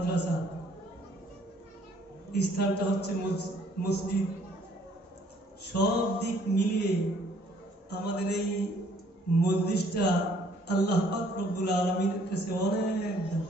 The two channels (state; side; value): normal; both; correlation 0.61